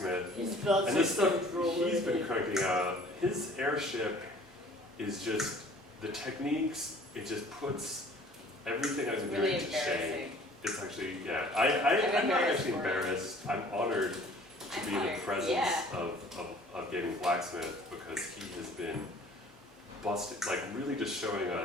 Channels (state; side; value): normal; both; correlation 0.51